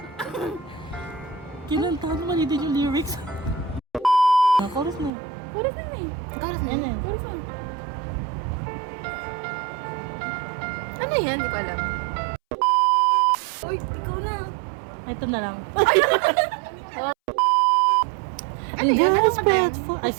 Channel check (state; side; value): drops out; left; at 5.1 s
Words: Kinantahan naman hindi yung lyrics. Chorus na. Chorus na yun eh. Karas na yan. Chorus na. Ano yan? Hindi ko alam. Uy, ikaw na. Ito na lang. Ano yan? Ano ba yan? I